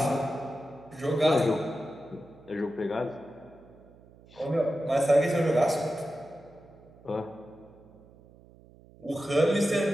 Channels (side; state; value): right; noise; hum, 24 dB below the sound